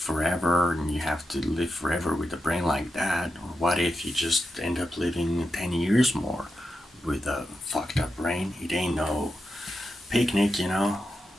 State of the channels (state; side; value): normal; both; correlation 0.89